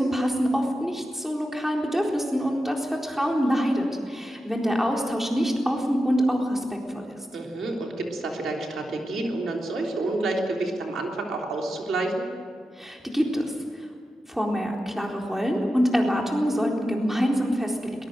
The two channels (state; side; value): normal; both; correlation 0.90